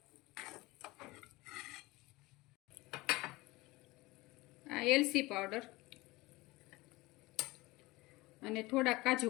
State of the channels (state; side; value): quieter; right; 21.1 dB